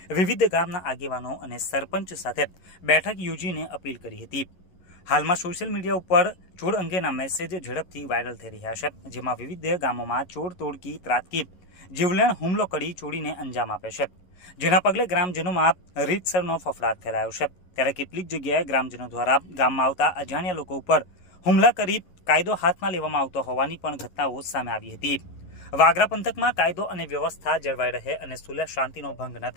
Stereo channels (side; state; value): right; late; 11 ms